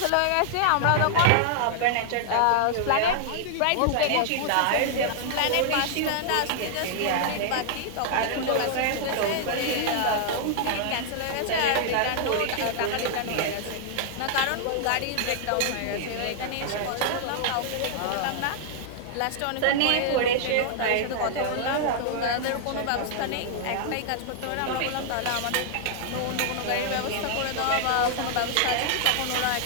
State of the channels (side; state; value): both; different; correlation -0.01